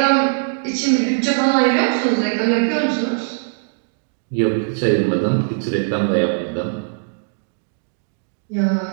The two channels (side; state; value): left; silent; digital silence